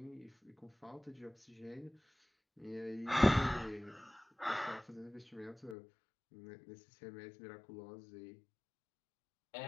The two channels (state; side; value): drops out; right; at 5.8 s